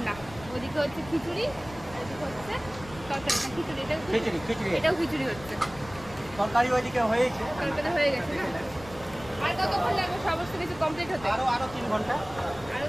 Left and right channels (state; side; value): noise; left; rumble, 17 dB below the sound